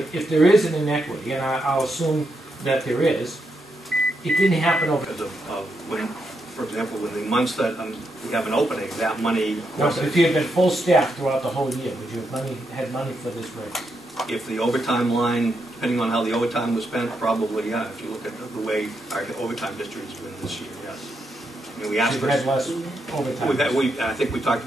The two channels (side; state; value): both; normal; correlation 0.82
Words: there is an inequity, and I'll assume that there is, it didn't happen over. Because of when, for example, in the months that we have an opening, that money. No, but if you had been full staff throughout the whole year, would you have had money for this raise? If the overtime line, depending on how the overtime was spent, probably, yeah. If you look at the way our overtime district has been this year, yes. I mean, we asked So for. you had less overtime. I think we talked